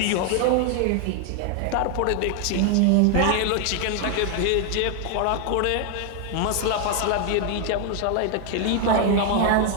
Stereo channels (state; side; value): different; both; correlation 0.01